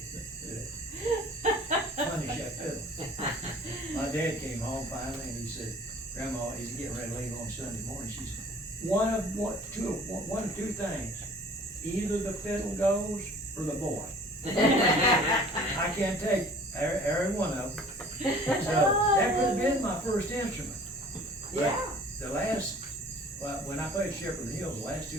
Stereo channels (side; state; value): both; normal; correlation 0.49